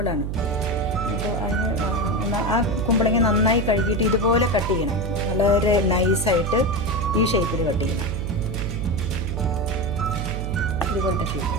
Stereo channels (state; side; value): noise; right; hum, 3 dB below the sound